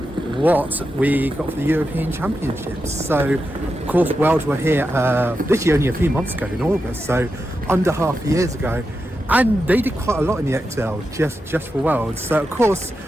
we got for the European Championships. So of course Worlds were here literally only a few months ago in August, so under half a years ago. And they did quite a lot in the XL just for Worlds. So of course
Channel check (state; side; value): normal; both; correlation 0.88